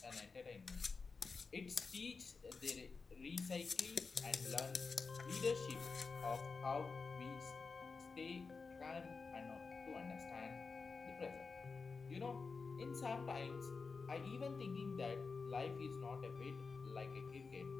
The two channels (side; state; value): right; quieter; 4.6 dB